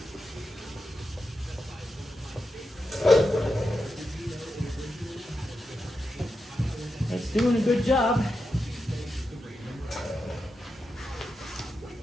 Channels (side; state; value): both; normal; correlation 0.88